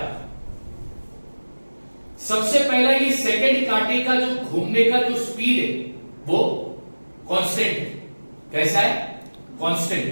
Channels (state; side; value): inverted; both; correlation -1.00